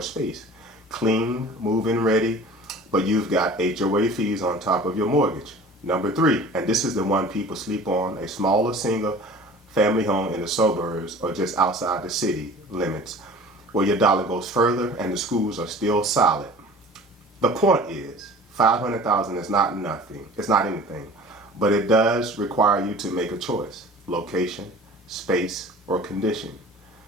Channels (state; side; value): normal; both; correlation 0.43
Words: space. Clean, move-in ready, but you've got HOA fees on top of your mortgage. Number 3, and this is the one people sleep on, a smaller single family home in the suburbs or just outside the city limits, where your dollar goes further and the schools are still solid. The point is, 500,000 is not nothing. It's not anything. But it does require you to make a choice: location, space, or condition.